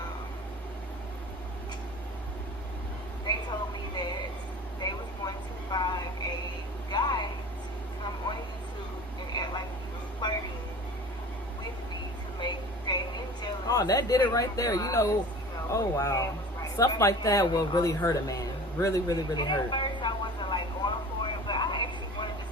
they told me that they was going to find a guy to come on YouTube and act like he was flirting with me to make Damien jealous. Oh, that did it right there. You know, oh wow. Stuff like that will really hurt a man. Really, really, really hurt. At first I wasn't like going for it, but I actually wanted to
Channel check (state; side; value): normal; both; correlation 0.40